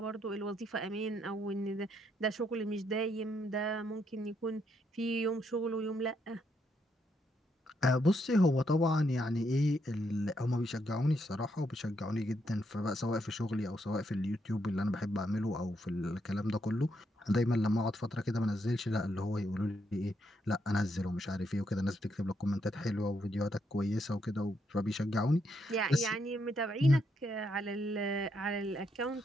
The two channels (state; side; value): normal; both; correlation 0.77